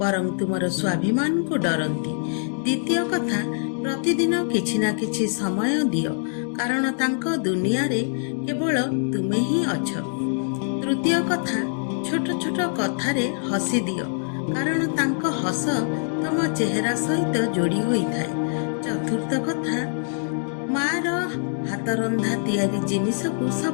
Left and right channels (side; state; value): right; silent; 62 dB below the other